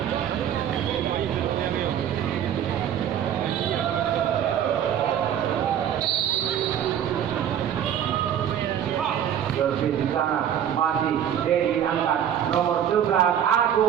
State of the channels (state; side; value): quieter; left; 9.7 dB